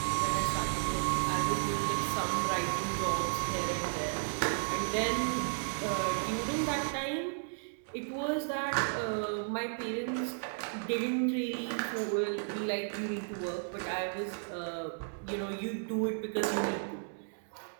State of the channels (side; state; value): left; silent; digital silence